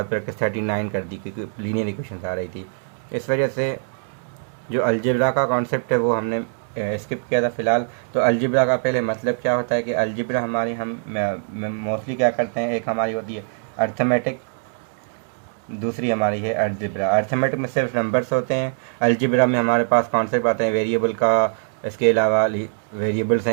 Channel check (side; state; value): left; silent; digital silence